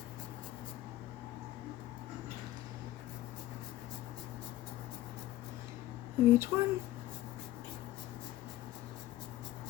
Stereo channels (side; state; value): right; quieter; 15.4 dB